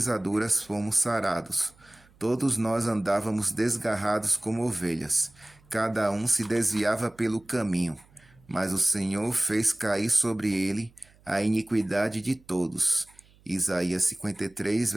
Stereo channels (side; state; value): right; noise; hum, 29 dB below the sound